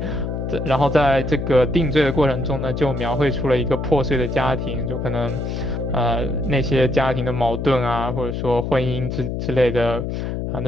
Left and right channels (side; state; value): left; noise; hum, 3 dB below the sound